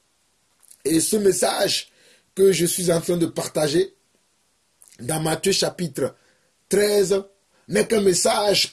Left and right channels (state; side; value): identical; both; correlation 1.00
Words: Et ce message que je suis en train de partager dans Matthieu chapitre 13 n'est qu'un message